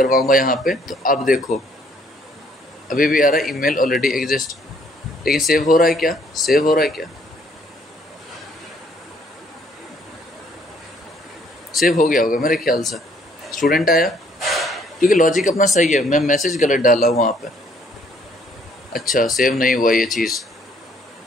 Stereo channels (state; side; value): normal; both; correlation 0.65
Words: यहाँ पे तो अब देखो अभी भी आ रहा है ईमेल ऑलरेडी एग्जिस्ट, लेकिन सेव हो रहा है क्या, सेव हो रहा है क्या, सेव हो गया होगा मेरे ख्याल से। स्टूडेंट आया, क्योंकि लॉजिक अपना सही है, मैं मैसेज गलत डाला हूँ वहाँ पे। अच्छा सेव नहीं हुआ ये चीज़,